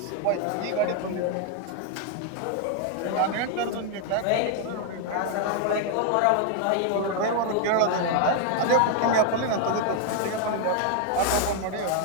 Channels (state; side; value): different; both; correlation 0.00